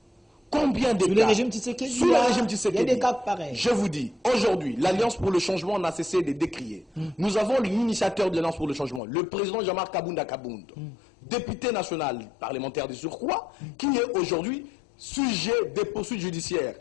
Combien de cas sur le régime Tshisekedi, sur le régime Tshisekedi, il y a des cas pareils. Je vous dis, aujourd'hui, l'Alliance pour le changement n'a cessé de décrier. Nous avons l'initiateur de l'Alliance pour le changement, le président Jean-Marc Kabunda Kabound, député national parlementaire de surcroît, qui est aujourd'hui sujet des poursuites judiciaires,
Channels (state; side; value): drops out; right; at 9.0 s